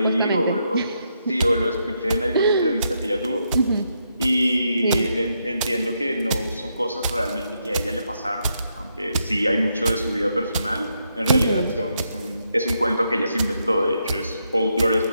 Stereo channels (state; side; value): inverted; both; correlation -0.80